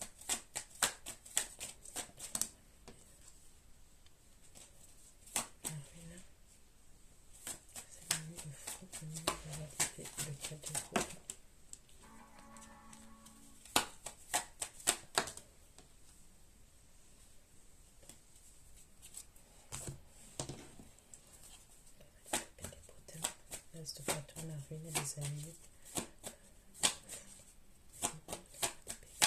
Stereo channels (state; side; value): identical; both; correlation 1.00